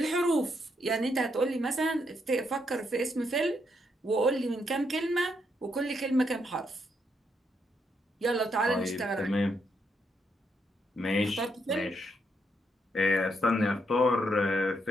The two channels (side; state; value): both; normal; correlation 0.77